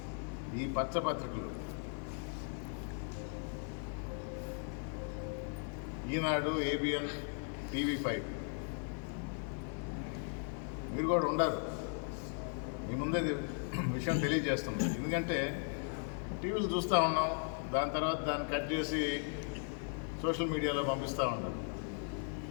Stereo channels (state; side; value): silent; right; 53 dB below the other